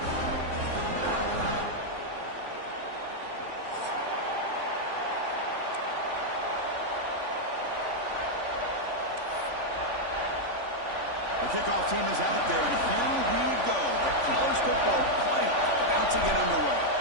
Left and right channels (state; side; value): late; left; 3.5 ms